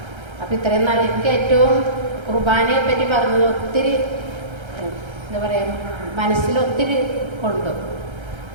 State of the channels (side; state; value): left; late; 1.3 ms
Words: അപ്പം ഇത്രയും നാൾ എനിക്ക് ഏറ്റവും കുർബാനയെ പറ്റി പറഞ്ഞത് ഒത്തിരി എന്താ പറയുക, മനസ്സിൽ ഒത്തിരി കൊണ്ടു.